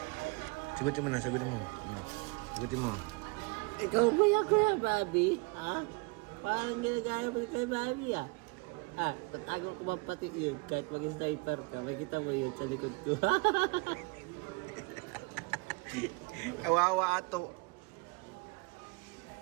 Sagutin mo na, sagutin mo. Sagutin mo. Ikaw ba yan, Kuya Bobby? Ha? Parang ginagaya mo kay Bobby, ah. Tatago ko man pati yun. Kahit mag-sniper ka, makikita mo yun sa likod ko. Kawawa ato.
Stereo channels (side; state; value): left; quieter; 28.9 dB